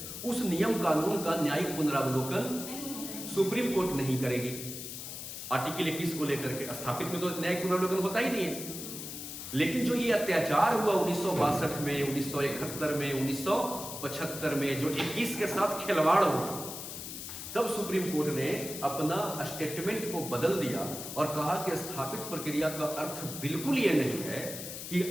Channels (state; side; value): noise; left; hiss, 8 dB below the sound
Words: उस नियम कानून का न्यायिक पुनरावलोकन सुप्रीम कोर्ट नहीं करेगी। आर्टिकल 21 को लेकर के स्थापित में तो न्यायिक पुनरावलोकन होता ही नहीं है। लेकिन जो ये अत्याचार हुआ 1962 में, 1971 में, 1975 में, जो 21 के साथ खिलवाड़ हुआ, तब सुप्रीम कोर्ट ने अपना स्टेटमेंट को बदल दिया और कहा कि स्थापित प्रक्रिया का अर्थ बिल्कुल ये नहीं है कि